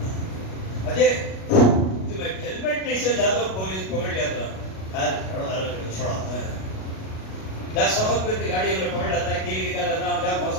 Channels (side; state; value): right; late; 37 ms